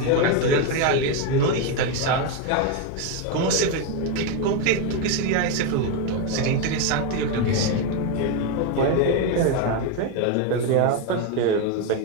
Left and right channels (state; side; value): different; both; correlation 0.02